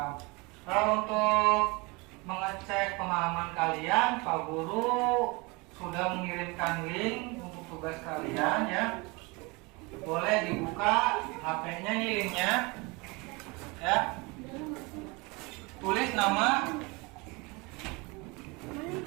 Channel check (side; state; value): left; quieter; 26.7 dB